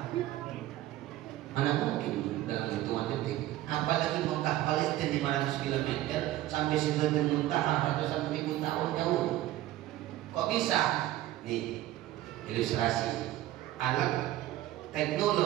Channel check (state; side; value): quieter; left; 14.9 dB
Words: Mana mungkin dalam hitungan detik. Apalagi Mekah Palestina 500 km sampai Sidratul Muntaha ratusan ribu tahun jauh. Kok bisa? Nih ilustrasi alat